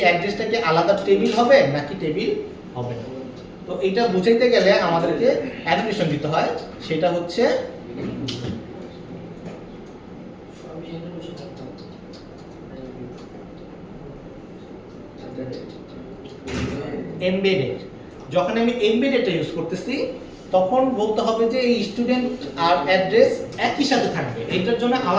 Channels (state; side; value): identical; both; correlation 1.00